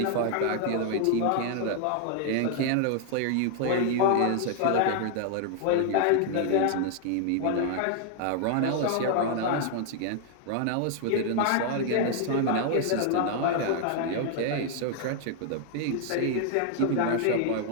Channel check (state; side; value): different; both; correlation 0.00